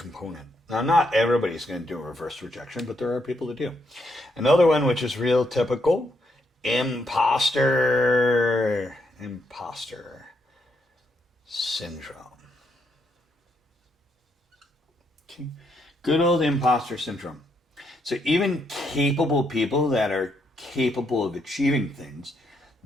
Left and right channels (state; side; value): normal; both; correlation 0.77